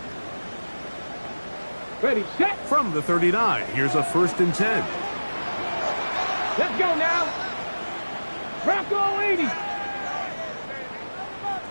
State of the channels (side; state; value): both; inverted; correlation -1.00